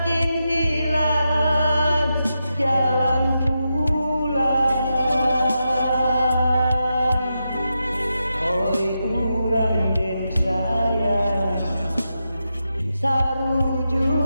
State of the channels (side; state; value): both; inverted; correlation -0.87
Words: hilang jalan pulang oi urang den sayang